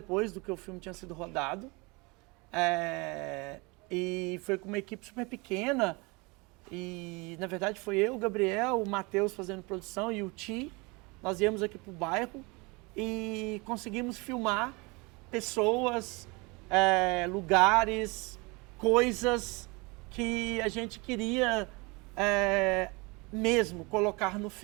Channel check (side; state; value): left; quieter; 27.0 dB